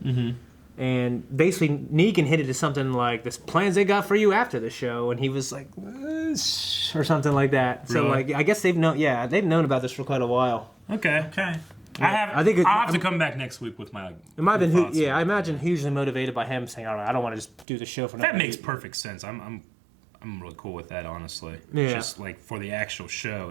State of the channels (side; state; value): left; drops out; at 17.7 s